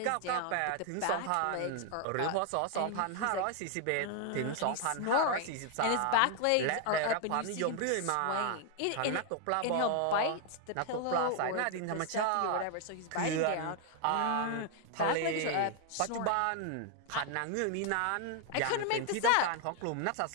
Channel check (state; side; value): different; both; correlation 0.00